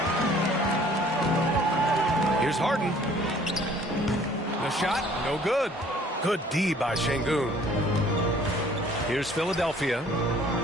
Here's Harden. The shot, no good. Good D by Şengün. Here's Philadelphia.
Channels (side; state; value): both; normal; correlation 0.55